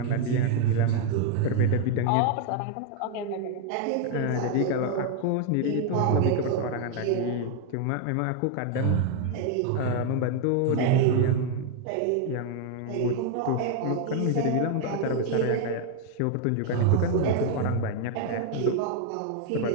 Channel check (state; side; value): different; both; correlation 0.00